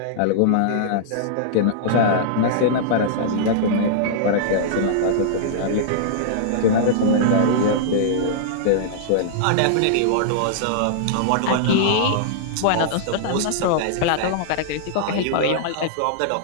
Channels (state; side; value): different; both; correlation -0.02